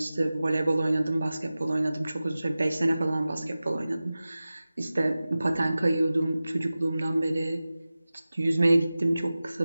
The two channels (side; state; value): both; inverted; correlation -0.96